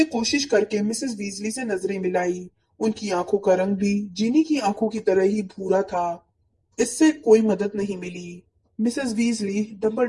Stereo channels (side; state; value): both; identical; correlation 1.00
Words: कोशिश करके मिसेस वीजली से नजरें मिलाई। उनकी आंखों का रंग भी जीनी की आंखों की तरह ही भूरा था। इससे कोई मदद नहीं मिली। मिसेस वीजली